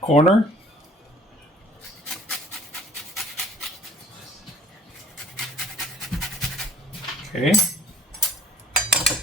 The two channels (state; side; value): normal; both; correlation 0.54